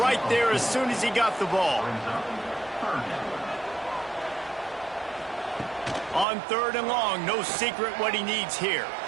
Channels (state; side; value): drops out; left; at 6.2 s